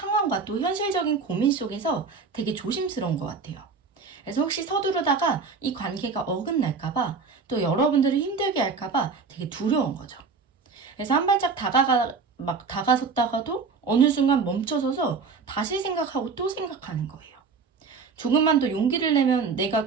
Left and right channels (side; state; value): left; quieter; 5.0 dB